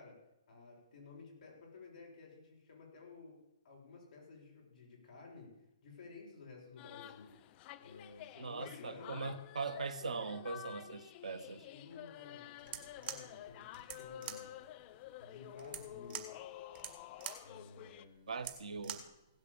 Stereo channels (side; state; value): both; inverted; correlation -0.50